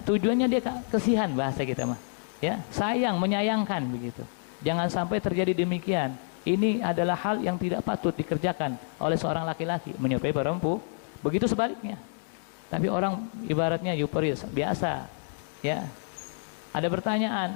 tujuannya dia kasihan bahasa kita mah. Ya, sayang, menyayangkan begitu. Jangan sampai terjadi demikian. Ini adalah hal yang tidak patut dikerjakan oleh seorang laki-laki menyupai perempuan. Begitu sebaliknya. Tapi orang ibaratnya euforia biasa. Ya. Ada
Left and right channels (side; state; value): right; silent; digital silence